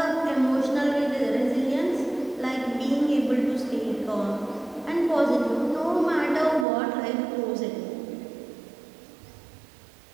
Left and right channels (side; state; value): left; drops out; at 6.7 s